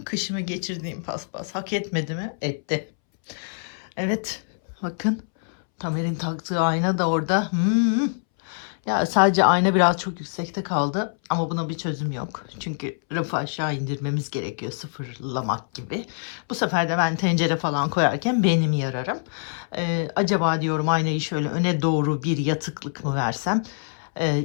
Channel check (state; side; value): silent; right; 62 dB below the other